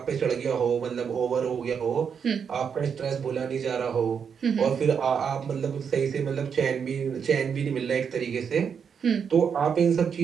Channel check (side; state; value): left; quieter; 6.9 dB